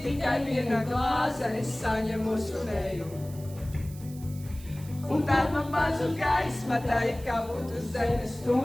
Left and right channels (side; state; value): right; noise; hiss, 20 dB below the sound